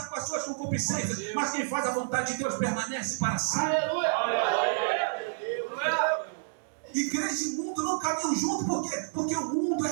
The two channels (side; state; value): left; silent; digital silence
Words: com as suas concupiscências, mas quem faz a vontade de Deus permanece para sempre. Aleluia. Igreja e mundo não caminham junto, por quê? Porque o mundo